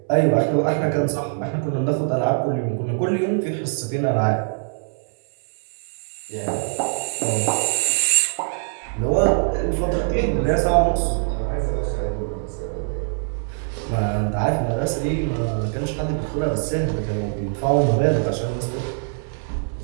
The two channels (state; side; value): silent; left; 61 dB below the other